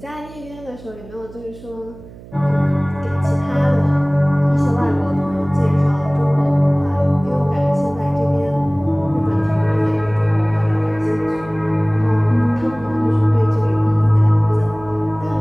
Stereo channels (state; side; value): noise; right; hum, 19 dB below the sound